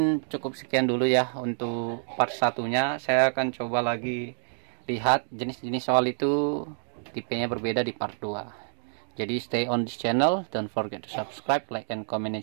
cukup sekian dulu ya untuk part satunya. Saya akan coba lagi lihat jenis-jenis soal itu, tipenya berbeda di part 2. Jadi stay on this channel, don't forget to subscribe, like and comment and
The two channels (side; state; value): left; silent; digital silence